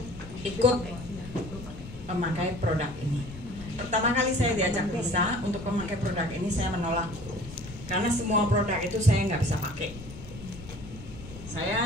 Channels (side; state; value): left; noise; rumble, 14 dB below the sound